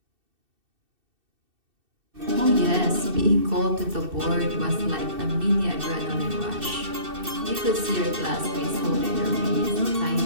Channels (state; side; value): late; left; 2.6 ms